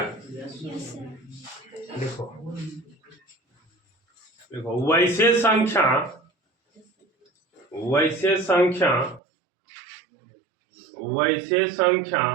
देखो देखो वैसे संख्या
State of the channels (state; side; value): drops out; left; at 9.2 s